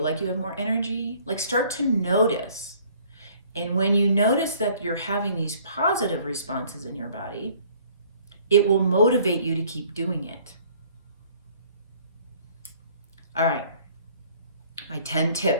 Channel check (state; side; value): inverted; both; correlation -0.57